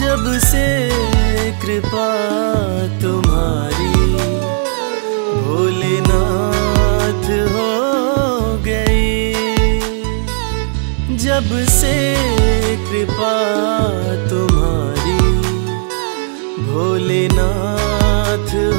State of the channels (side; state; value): left; silent; digital silence